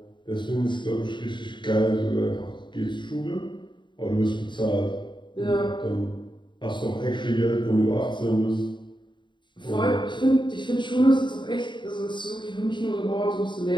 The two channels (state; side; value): late; right; 0.23 ms